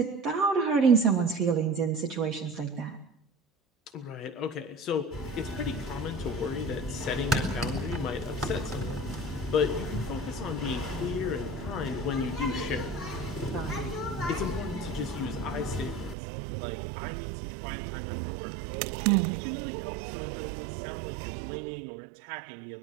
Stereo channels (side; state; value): left; drops out; at 16.2 s